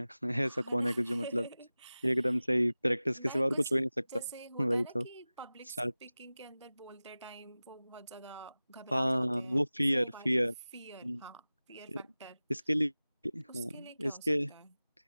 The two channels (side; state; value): both; inverted; correlation -0.98